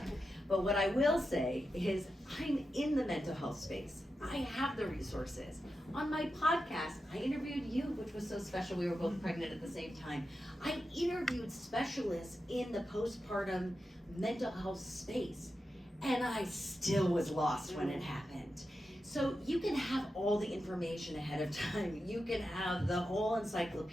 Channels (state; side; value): normal; both; correlation 0.89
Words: But what I will say is, I'm in the mental health space. I have the resources. On my podcast, I interviewed you, which was so special. We were both pregnant at the same time. I interviewed specialists in the postpartum mental health space, and I still was lost when it happened. So you can have all the information ahead of time. You can have the whole